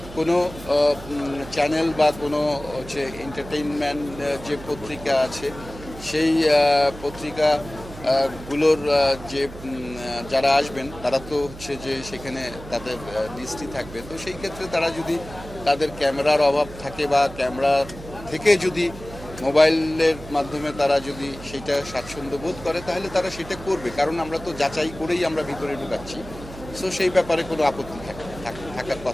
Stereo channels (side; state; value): right; noise; hum, 15 dB below the sound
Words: কোনো চ্যানেল বা কোনো হচ্ছে এন্টারটেইনমেন্ট যে পত্রিকা আছে, সেই পত্রিকাগুলোর যে যারা আসবেন তারা তো হচ্ছে যে সেখানে তাদের লিস্টই থাকবে। তো সেই ক্ষেত্রে তারা যদি তাদের ক্যামেরার অভাব থাকে বা ক্যামেরা থেকে যদি মোবাইলের মাধ্যমে তারা যদি সেটা স্বাচ্ছন্দ্য বোধ করে, তাহলে তারা সেটা করবে, কারণ আমরা তো যাচাই করেই আমরা ভিতরে ঢুকাচ্ছি। সো সেই ব্যাপারে কোনো আপত্তি থাকার